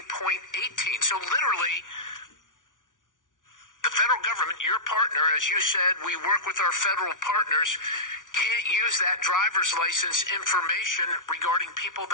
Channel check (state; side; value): late; right; 0.88 ms